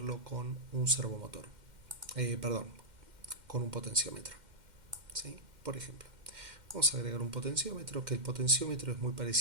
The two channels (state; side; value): late; left; 2.1 ms